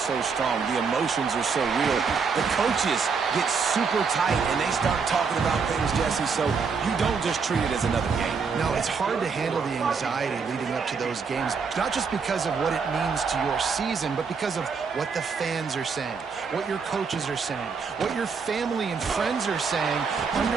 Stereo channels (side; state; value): left; quieter; 5.4 dB